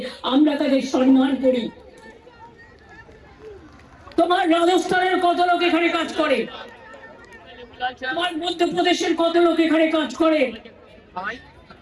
আমরা তাদের সম্মান করি। তোমার রাজস্থানের কত লোক এখানে কাজ করে, তোমার মধ্যপ্রদেশের কত লোক এখানে কাজ করে,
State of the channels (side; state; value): both; identical; correlation 1.00